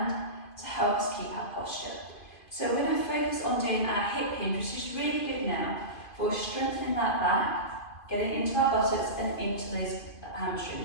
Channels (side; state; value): right; late; 2.5 ms